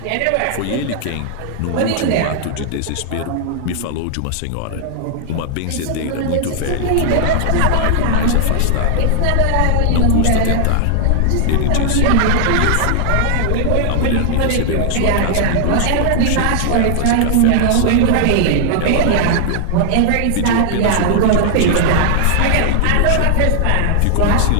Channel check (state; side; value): different; both; correlation -0.01